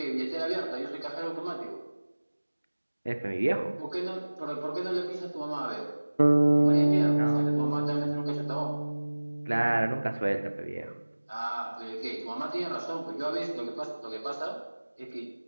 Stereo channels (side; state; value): both; inverted; correlation -1.00